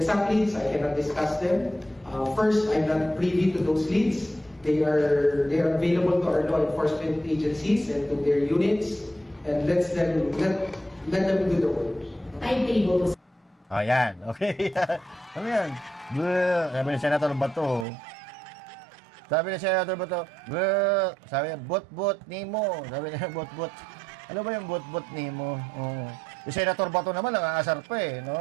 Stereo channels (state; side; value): drops out; left; at 17.9 s